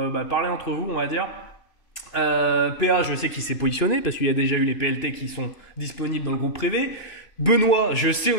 parler entre vous, on va dire. PA, je sais qu'il s'est positionné parce qu'il y a déjà eu les PLT qui sont disponibles dans le groupe privé. Benoît, je sais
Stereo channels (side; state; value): right; late; 2.9 ms